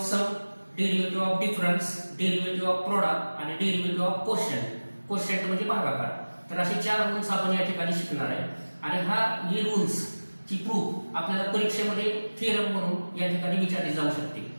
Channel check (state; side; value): inverted; both; correlation -1.00